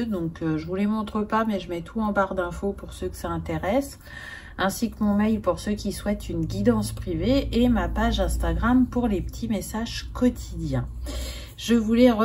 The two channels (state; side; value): identical; both; correlation 1.00